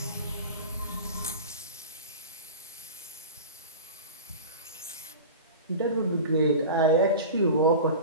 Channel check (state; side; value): inverted; both; correlation -0.32